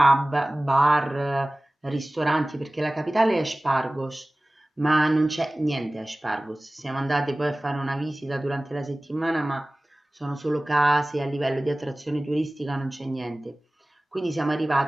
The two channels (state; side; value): normal; both; correlation 0.98